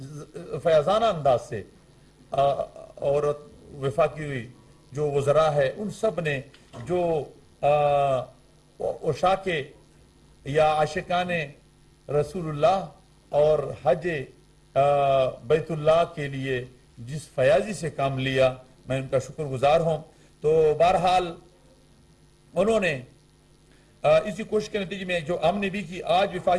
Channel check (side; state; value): both; identical; correlation 1.00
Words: فیاضانہ انداز سے اور وفاقی جو وزراء ہے ان سب نے جو عشاق یا عاشقان رسول اللہ اور حج بیت اللہ کے لیے جس فیاضی سے کام لیا، میں ان کا شکر گزار ہوں۔ تو بہرحال انہوں نے اسی کوشش کے نتیجے میں جو ہم نے بھی کی، آج